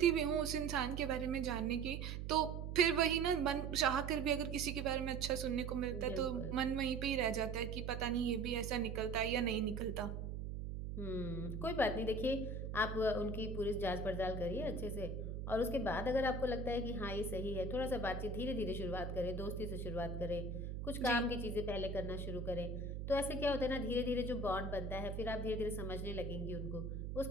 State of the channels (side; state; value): right; noise; hum, 5 dB below the sound